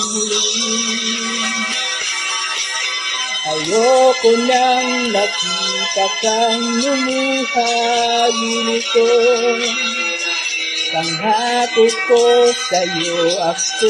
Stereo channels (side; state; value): both; identical; correlation 1.00